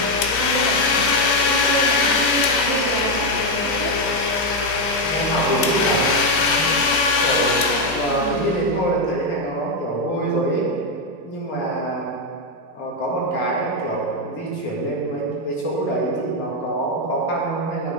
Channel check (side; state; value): right; late; 2.5 ms